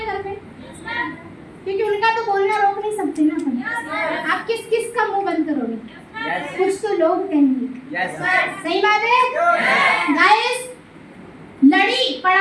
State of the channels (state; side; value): identical; both; correlation 1.00